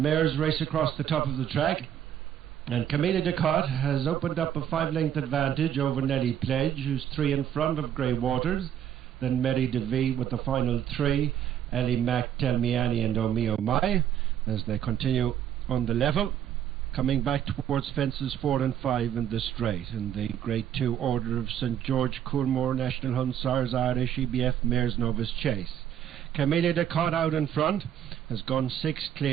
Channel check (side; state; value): left; quieter; 9.9 dB